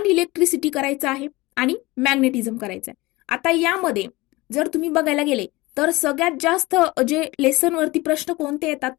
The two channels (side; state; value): right; quieter; 21.4 dB